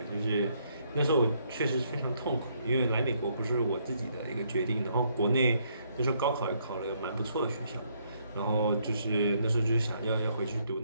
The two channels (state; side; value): inverted; both; correlation -0.71